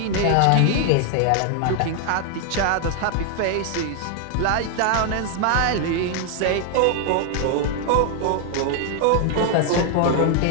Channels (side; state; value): both; different; correlation 0.00